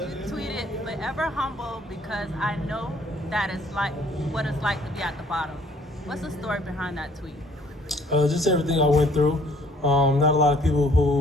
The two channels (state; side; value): normal; both; correlation 0.60